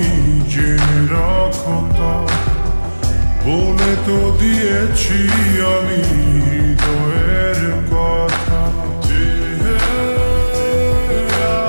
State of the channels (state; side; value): inverted; both; correlation -1.00